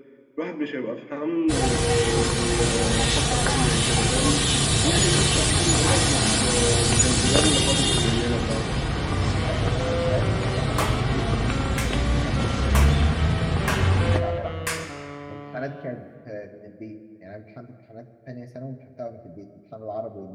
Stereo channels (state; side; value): identical; both; correlation 1.00